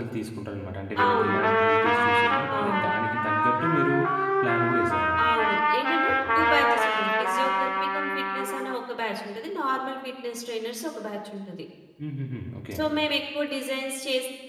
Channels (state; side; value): identical; both; correlation 1.00